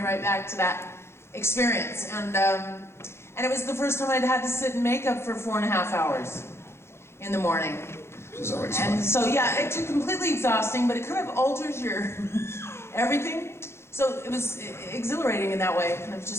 back to that experience. And it was the first time I'd had to sit in makeup for 4.5 hours in the morning. It's always fun. And so yeah, it's completely exhausting, but it kind of alters your everything. So it was exhilarating in that way. It kind of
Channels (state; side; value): late; right; 0.12 ms